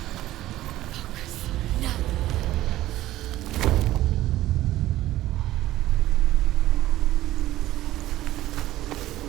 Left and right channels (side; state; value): left; quieter; 15.0 dB